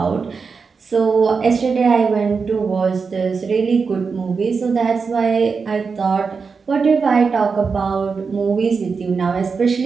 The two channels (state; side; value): quieter; left; 5.1 dB